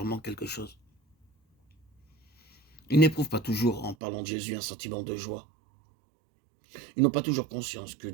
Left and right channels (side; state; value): left; drops out; at 4.0 s